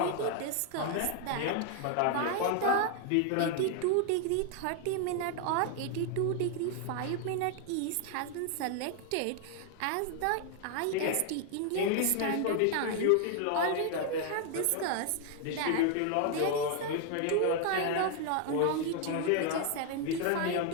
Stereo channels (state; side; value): different; both; correlation 0.00